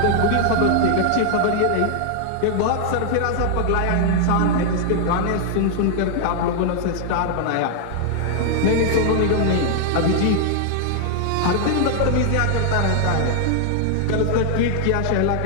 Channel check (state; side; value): different; both; correlation 0.00